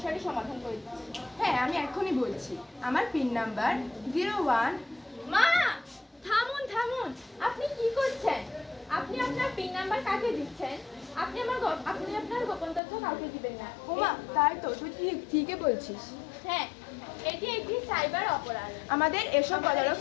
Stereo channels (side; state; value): right; drops out; at 12.8 s